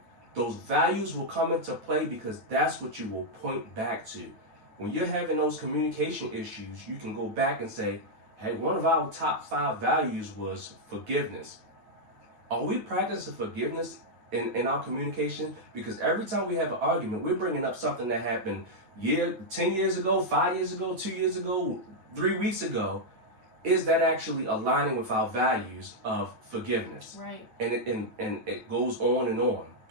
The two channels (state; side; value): late; left; 9.2 ms